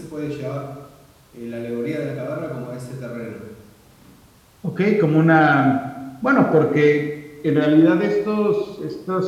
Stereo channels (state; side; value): identical; both; correlation 1.00